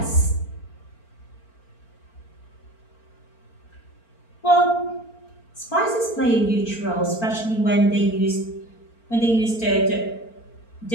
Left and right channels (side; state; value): right; late; 4.4 ms